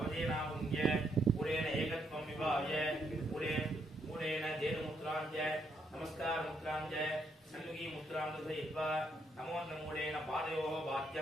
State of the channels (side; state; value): both; normal; correlation 0.75